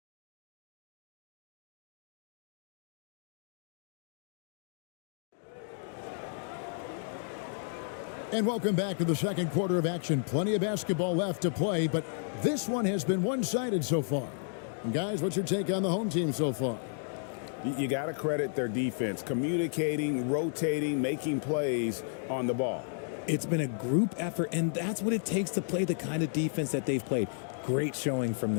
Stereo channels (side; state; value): right; silent; digital silence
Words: And welcome back to the second quarter of action. Plenty of basketball left to play, but this one has been one-sided so far. And guys, what's your take on the home team so far? You got to credit their defense, communicating, rotating, making plays on the ball. It's been a group effort, and that's what it takes to play the kind of defense that they've played. Great showing from